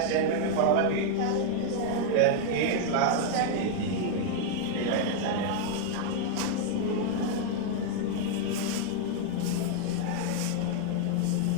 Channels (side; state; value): both; different; correlation 0.00